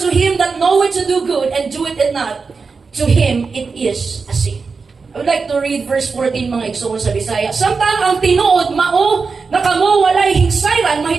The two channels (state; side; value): quieter; left; 4.8 dB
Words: him that knoweth to do good and doeth it not, to him it is a sin. I would like to read verse 14 mga igsoon sa Bisaya. Samtang ang tinuod mao na kamo walay hingsayran